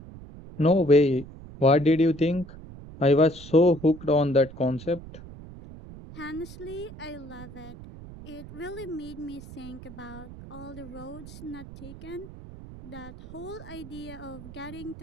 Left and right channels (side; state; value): right; noise; rumble, 15 dB below the sound